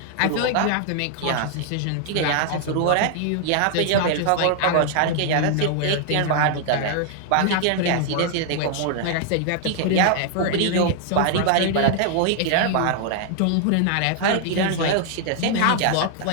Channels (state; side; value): different; both; correlation 0.00